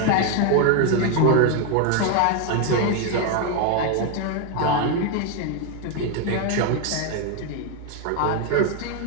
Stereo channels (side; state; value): both; different; correlation 0.01